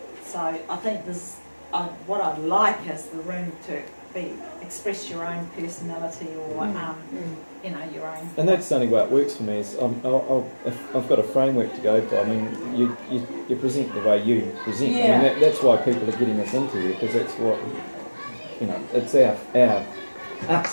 So I think this. What I'd like is the room to express your own personality or your own. And that's the only way it works for me. Is if I've got a framework to go by. You present the way you present. Yeah. That's why people are getting us into here because that's what it's our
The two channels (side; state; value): both; inverted; correlation -1.00